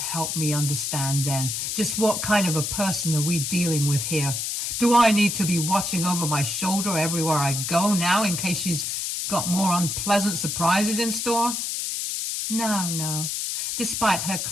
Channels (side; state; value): left; noise; hiss, 2 dB below the sound